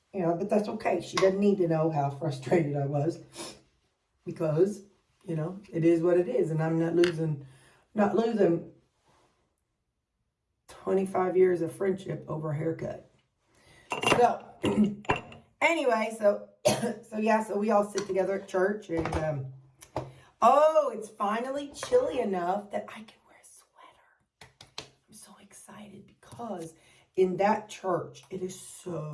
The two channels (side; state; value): both; identical; correlation 1.00